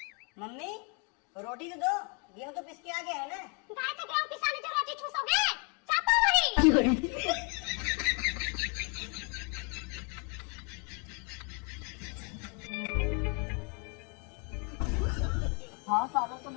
मम्मी रोटी तो दो, गेहूँ तो पिस के आ गया है ना। गाय तो गेहूँ पिसाने जो रोटी चूसोगे, चापो वही। हाँ सालों तुम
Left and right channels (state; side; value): quieter; right; 34.9 dB